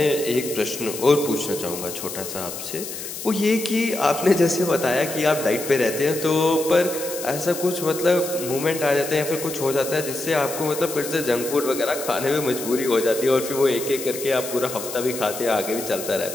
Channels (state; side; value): noise; left; hiss, 9 dB below the sound